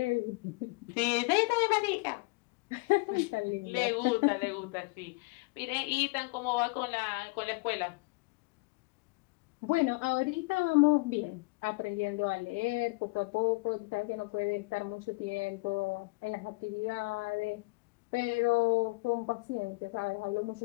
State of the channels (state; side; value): quieter; right; 26.6 dB